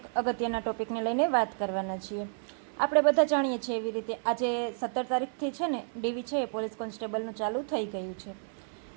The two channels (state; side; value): silent; left; 57 dB below the other